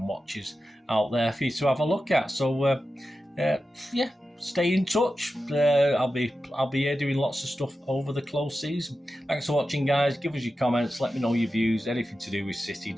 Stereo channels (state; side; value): normal; both; correlation 0.92